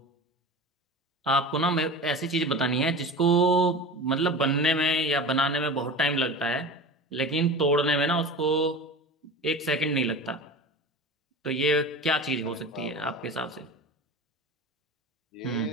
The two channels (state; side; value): normal; both; correlation 0.32